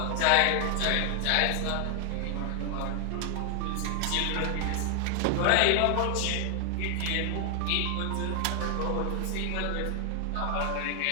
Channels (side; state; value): both; different; correlation 0.00